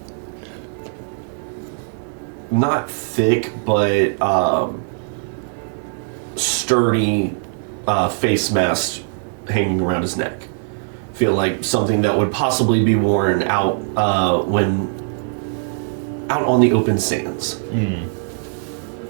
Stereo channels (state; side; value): silent; left; 65 dB below the other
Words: not thick, but sturdy face mask hanging around his neck. Feel like something that would possibly be worn out when out on the open sands.